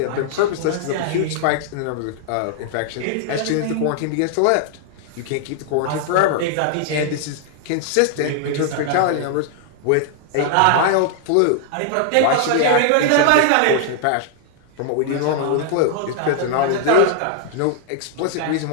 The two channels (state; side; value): different; both; correlation 0.00